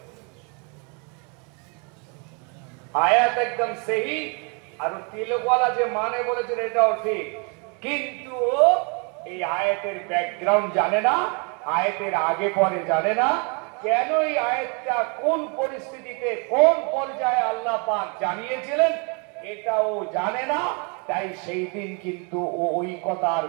আয়াত একদম সহি। আর তিলকওয়ালা যে মানে বলেছে এটাও ঠিক, কিন্তু ও এই আয়াতের ব্যাকগ্রাউন্ড জানে না, আয়াতের আগে পরে জানে না। কেন এই আয়াতটা কোন পরিস্থিতিতে কোন পর্যায়ে আল্লাহ পাক জানিয়েছিলেন এটাও জানে না। তাই সেই দিন কিন্তু ও ওই কথা আর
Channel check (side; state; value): left; quieter; 35.0 dB